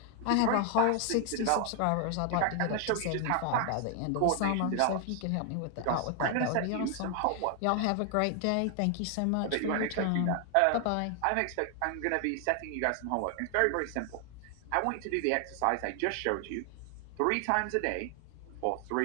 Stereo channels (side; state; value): both; different; correlation 0.00